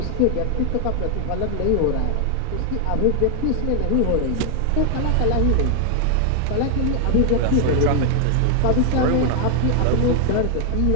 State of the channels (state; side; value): different; both; correlation 0.00